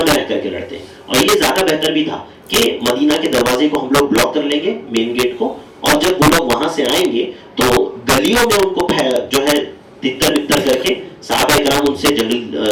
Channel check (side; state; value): both; identical; correlation 1.00